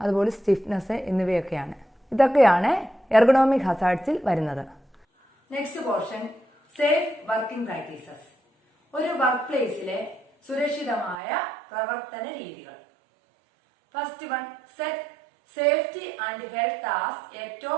അതുപോലെ സ്റ്റിഫ്നെസ് എന്നിവയൊക്കെയാണ്. ഇതൊക്കെയാണ് എർഗണോമിക് ഹസാർഡ്സിൽ വരുന്നത്. Next portion, safe working practices. ഒരു വർക്ക് പ്ലേസിലെ സുരക്ഷിതമായ പ്രവർത്തന രീതികൾ. First one, set safety and health as a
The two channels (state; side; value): drops out; left; at 11.2 s